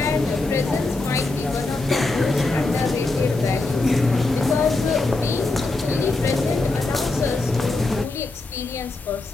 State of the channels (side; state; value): right; quieter; 3.2 dB